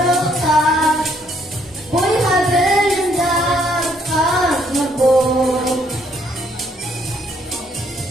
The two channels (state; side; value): normal; both; correlation 0.68